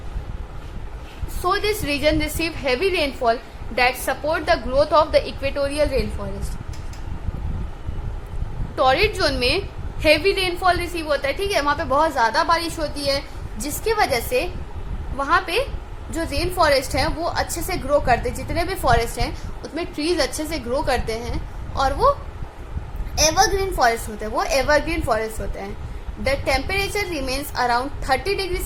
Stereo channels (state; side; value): identical; both; correlation 1.00